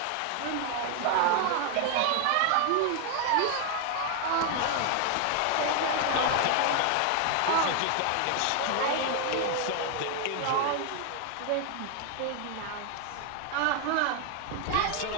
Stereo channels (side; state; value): both; different; correlation 0.00